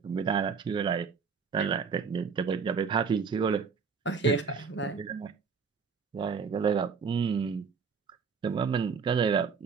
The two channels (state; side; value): quieter; left; 5.7 dB